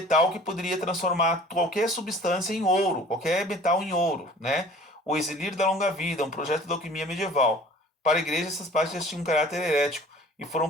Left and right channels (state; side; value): normal; both; correlation 0.47